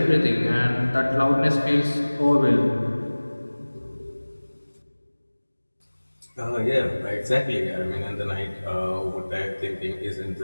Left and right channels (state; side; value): inverted; both; correlation -1.00